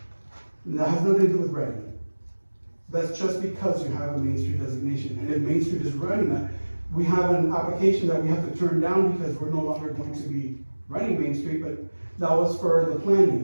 And that has nothing to do with ready. That's just because you have a Main Street designation, and if Main Street is running that, we have an application that we have to turn down because we're no longer going to be running Main Street, but that was for the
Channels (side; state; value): both; inverted; correlation -1.00